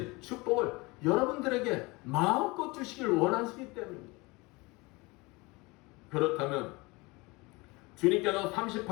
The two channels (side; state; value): right; quieter; 24.5 dB